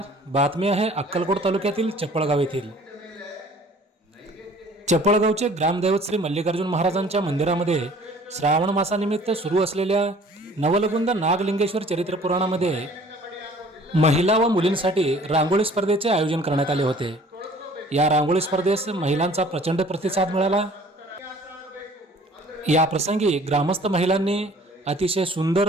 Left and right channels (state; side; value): normal; both; correlation 0.51